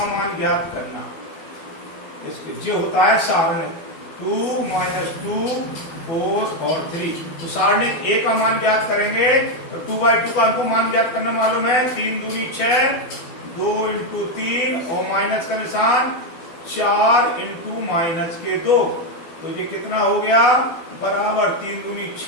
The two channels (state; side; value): late; right; 12 ms